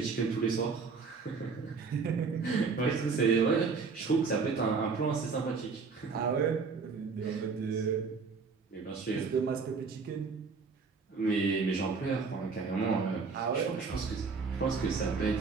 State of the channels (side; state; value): left; quieter; 4.9 dB